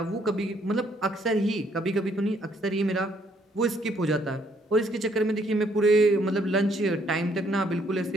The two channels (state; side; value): normal; both; correlation 0.68